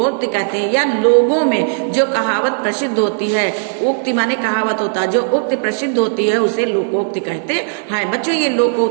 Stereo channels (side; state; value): left; silent; digital silence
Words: कहते हैं। या लोगों में जो कहावत प्रसिद्ध होती है, उक्ति माने कहावत होता है, जो उक्ति प्रसिद्ध होती है उसे लोकोक्ति कहते हैं। बच्चों, ये